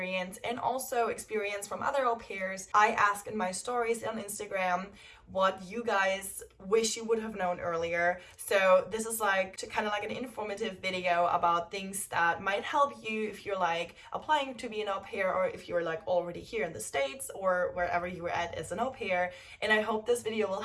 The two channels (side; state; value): both; identical; correlation 1.00